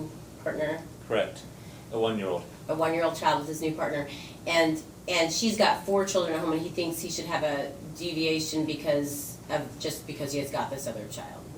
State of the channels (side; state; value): both; identical; correlation 1.00